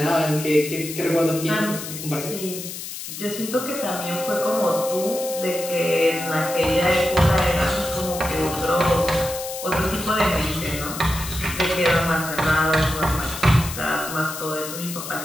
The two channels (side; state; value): left; noise; hiss, 9 dB below the sound